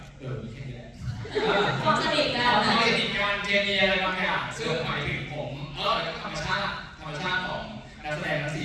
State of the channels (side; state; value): both; identical; correlation 1.00